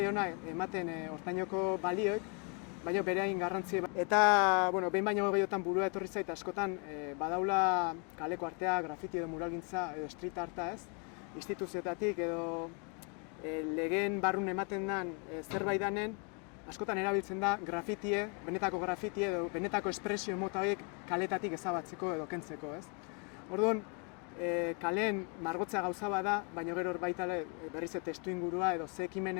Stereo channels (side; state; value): right; quieter; 36.1 dB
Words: ematen hortainoko balioek, baina bere hain garrantzia. Eta, behin baino gehiotan burua etorri zait, askotan badaula kaleko artea, grafiti edo muralgintza edo street arta, instituzioetatik edo legeen barrun ematen den zerbait danen, askotan erabiltzen da grafitie, benetako grafitie edo benetako espresio mota horiek kaletatik ezabatzeko edo kentzeko, Orduan, kaleen margotzea gauza bada, baina gero baita berriz testu ingurua edo ze